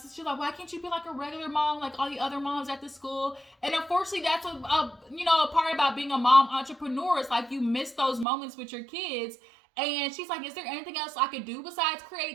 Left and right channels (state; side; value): drops out; left; at 8.2 s